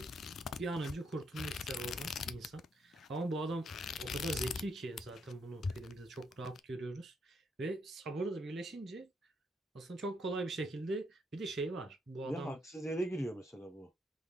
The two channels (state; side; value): normal; both; correlation 0.75